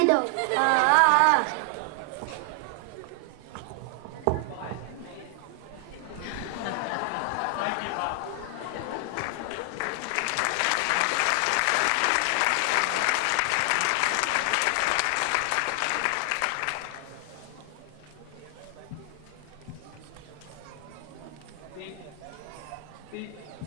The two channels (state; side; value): different; both; correlation 0.00